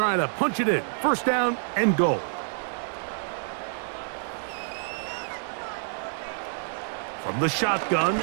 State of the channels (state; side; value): silent; left; 60 dB below the other